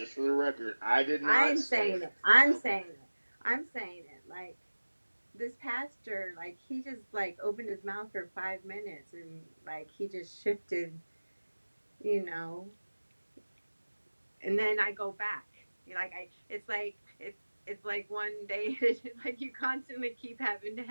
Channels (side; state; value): both; inverted; correlation -1.00